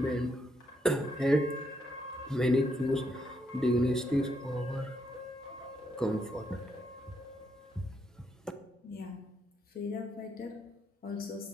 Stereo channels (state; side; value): normal; both; correlation 0.77